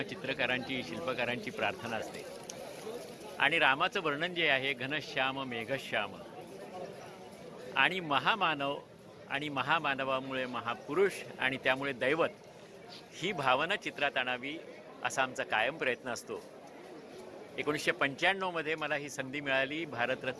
चित्रकारांची शिल्पकारांची प्रार्थना असते। आणि रामाचं वर्णन जे आहे घनश्याम मेघश्याम आणि महामानव आणि महामानवामुळे महापुरुष आणि त्यामुळे दैवत ही भावना चित्रात आणावी असा आमचा कायम प्रयत्न असतो। 1995 मध्ये मला ही संधी मिळाली।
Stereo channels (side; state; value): both; identical; correlation 1.00